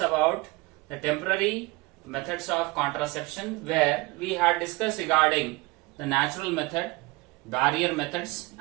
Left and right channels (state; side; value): quieter; left; 23.6 dB